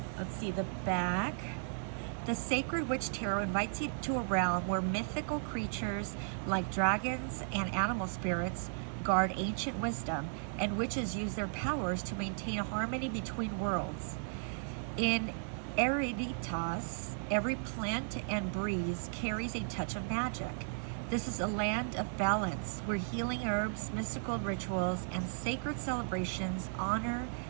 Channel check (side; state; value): left; silent; digital silence